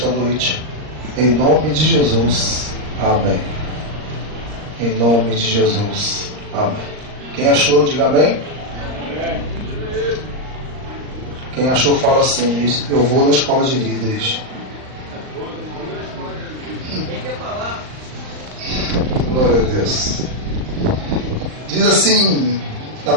noite. Em nome de Jesus. Amém. Em nome de Jesus. Amém. Quem achou, diga amém. Quem achou, fala assim: eu vou na escola de líderes. Glória a Deus. Diz assim na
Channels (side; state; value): left; late; 39 ms